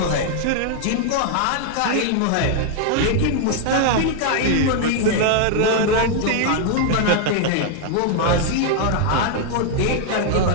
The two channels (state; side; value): different; both; correlation 0.00